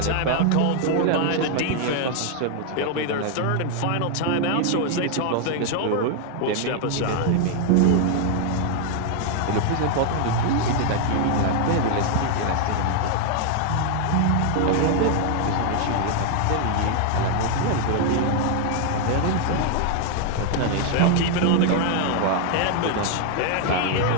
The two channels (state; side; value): different; both; correlation 0.00